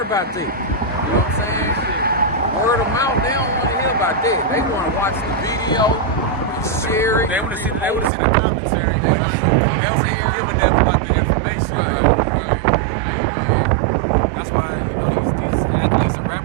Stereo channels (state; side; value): drops out; left; at 8.1 s